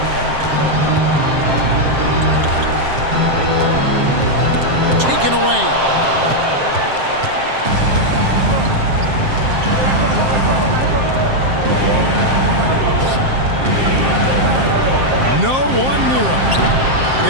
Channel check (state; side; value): late; left; 7.6 ms